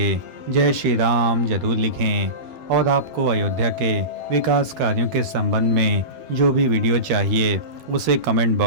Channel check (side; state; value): left; late; 12 ms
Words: जय श्री राम जरूर लिखें। और आपको अयोध्या के विकास कार्यों के संबंध में जो भी वीडियो चाहिए उसे कमेंट